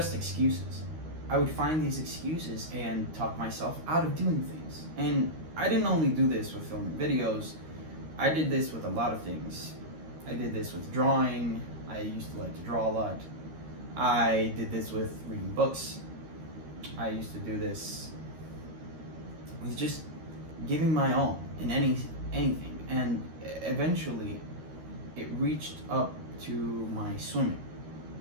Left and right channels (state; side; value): late; left; 13 ms